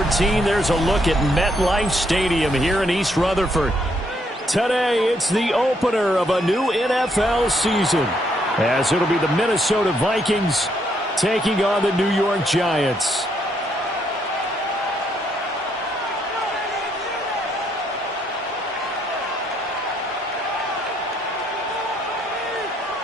there's a look at MetLife Stadium here in East Rutherford. Today, it's the opener of a new NFL season, as it'll be the Minnesota Vikings taking on the New York Giants.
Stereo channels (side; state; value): both; normal; correlation 0.73